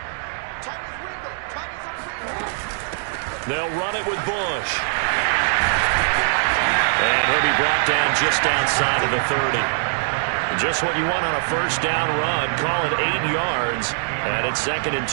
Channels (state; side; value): silent; left; digital silence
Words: They'll run it with Bush. And he'll be brought down just outside of the 30. Just what you want on a first down run. Call it 8 yards. And it's 2nd and